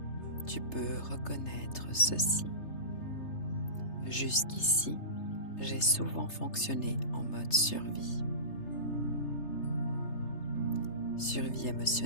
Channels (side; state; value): right; late; 3.3 ms